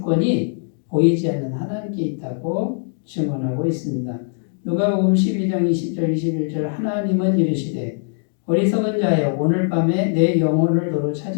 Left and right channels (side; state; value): right; silent; 65 dB below the other